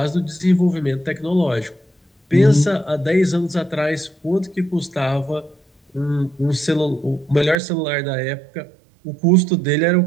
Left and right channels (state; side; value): drops out; left; at 7.6 s